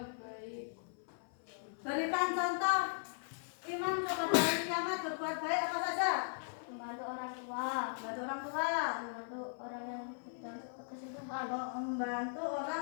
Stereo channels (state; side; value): silent; right; 52 dB below the other